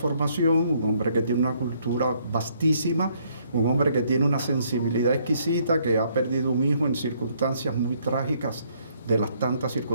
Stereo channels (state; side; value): inverted; both; correlation -0.68